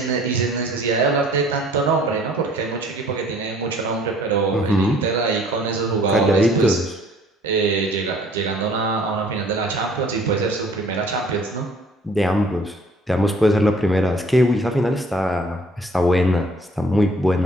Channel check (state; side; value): normal; both; correlation 0.56